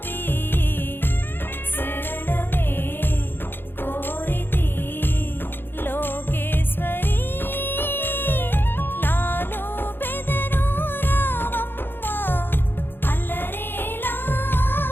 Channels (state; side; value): late; right; 0.10 ms